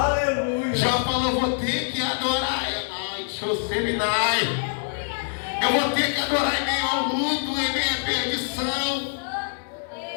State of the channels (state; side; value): silent; right; digital silence